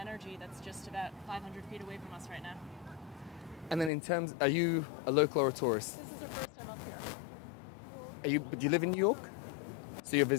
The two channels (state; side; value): drops out; right; at 3.9 s